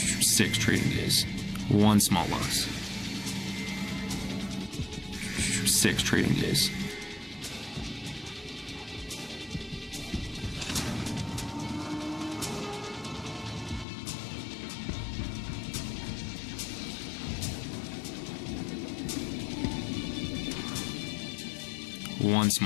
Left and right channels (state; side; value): drops out; right; at 13.9 s